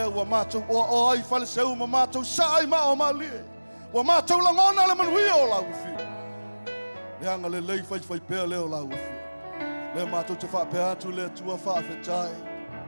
wa mātou o ai whale seu ma mātou saai ma o malie. Wa mātou langona le manuia o lau whiu. Le anga le lei whai pēr leo lau whiu. Le mātou te whapea atu le tua whaafetai.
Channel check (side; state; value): both; inverted; correlation -1.00